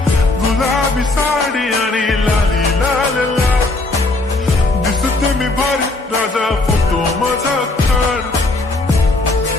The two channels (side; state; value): right; quieter; 3.1 dB